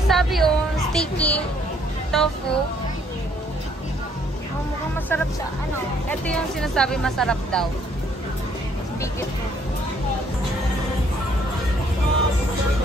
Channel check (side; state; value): both; normal; correlation 0.65